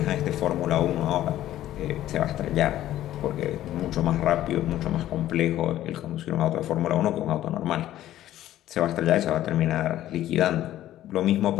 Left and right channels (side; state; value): right; quieter; 13.3 dB